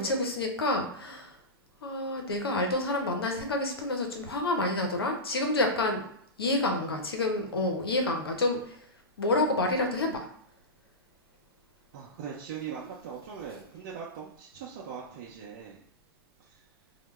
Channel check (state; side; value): normal; both; correlation -0.15